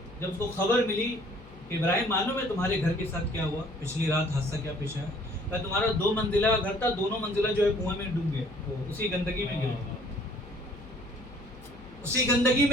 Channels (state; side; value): noise; left; hum, 20 dB below the sound